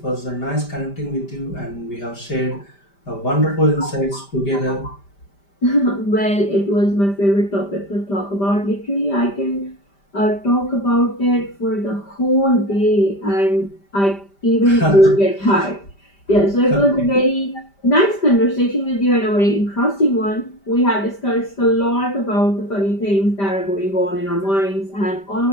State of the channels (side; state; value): right; late; 5.1 ms